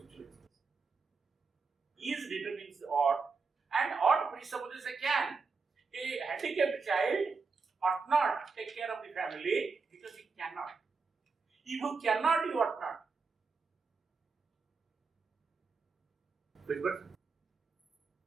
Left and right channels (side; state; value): left; quieter; 4.7 dB